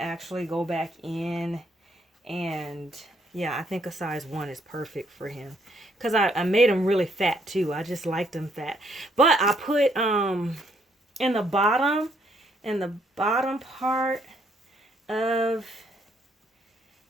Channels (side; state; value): both; normal; correlation 0.70